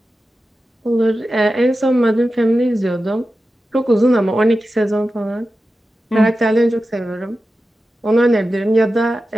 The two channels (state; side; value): normal; both; correlation 0.93